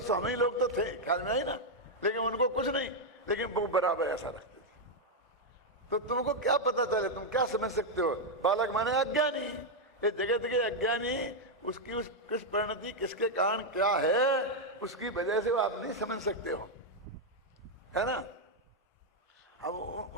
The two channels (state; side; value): normal; both; correlation 0.00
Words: हम ही लोग तो थे, ख्याल में आई ना। लेकिन उनको कुछ नहीं, लेकिन वो बराबर ऐसा रखते थे। तो तुमको क्या पता चले, तुम क्या समझ सकते हो? बालक माने अज्ञानी, ये जगत के अज्ञानी, उसकी उस किस परिणति किसके कारण क्या है, उसकी वजह से वो आप नहीं समझ सकते हो, है ना। अब